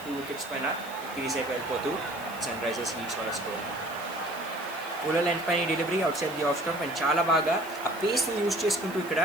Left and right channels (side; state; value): right; noise; hiss, 18 dB below the sound